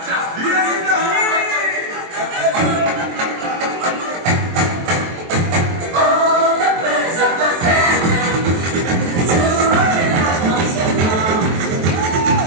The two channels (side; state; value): left; late; 23 ms